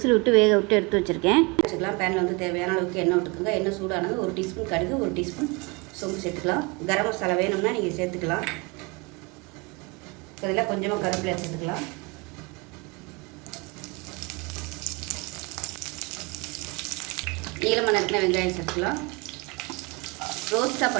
விட்டு வேக விட்டு எடுத்து வச்சுருக்கேன். வச்சுக்கலாம். பேனில் வந்து தேவையான அளவுக்கு எண்ணெய் விட்டுக்குங்க. எண்ணெய் சூடானது 1 டீஸ்பூன் கடுகு, 1 டீஸ்பூன் சோம்பு சேர்த்துக்கலாம். கரம் மசாலா வேணும்னா நீங்கள் சேர்த்துக்கலாம். இதில் கொஞ்சமாக கருவேப்பிலை சேர்த்துக்கலாம். நீளமாக நறுக்கின வெங்காயம் சேர்த்துக்கலாம். ரோஸ்ட்டாக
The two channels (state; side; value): quieter; left; 27.9 dB